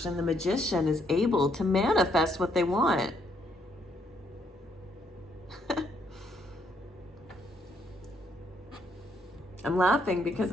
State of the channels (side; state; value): both; normal; correlation 0.72